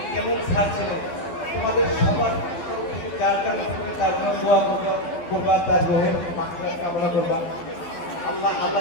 কেমন স্যার ছিলেন। তোমাদের সবার তরফ থেকে যার জন্য তার জন্য দোয়া করবা, তার গ্রহের মাত্রা কামনা করবা। আল্লাহ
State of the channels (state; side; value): late; right; 12 ms